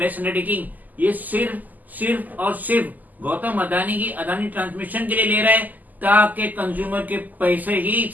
अंडरटेकिंग, ये सिर्फ और सिर्फ गौतम अदानी की अदानी ट्रांसमिशन के लिए ले रहा है, ताकि कंज्यूमर के पैसे ही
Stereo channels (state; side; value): late; left; 0.082 ms